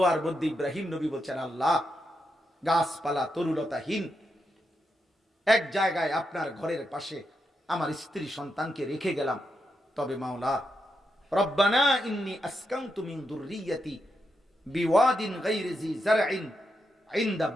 মধ্যে ইব্রাহিম নবী বলছেন, আল্লাহ, গাছপালা তরুলতাহীন এক জায়গায় আপনার ঘরের পাশে আমার স্ত্রী সন্তানকে রেখে গেলাম, তবে মাওলা, রব্বানা ইন্নী আসকানতু মিন যুররিয়্যাতি বিওয়াদিন গায়রি জি যারইন ইনদা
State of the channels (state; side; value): normal; both; correlation 0.84